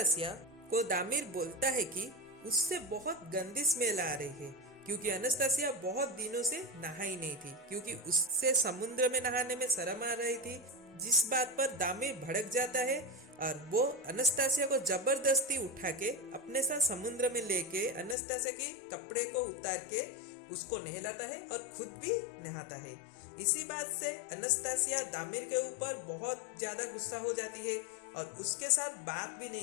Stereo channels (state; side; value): drops out; right; at 18.2 s